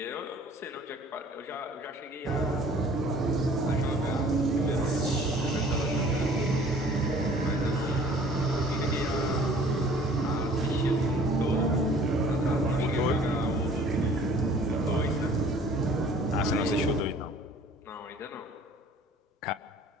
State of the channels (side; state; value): both; normal; correlation 0.52